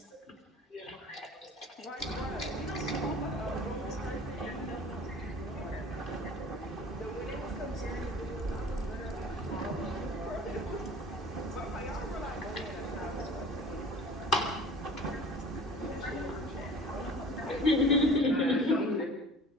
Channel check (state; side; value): normal; both; correlation 0.44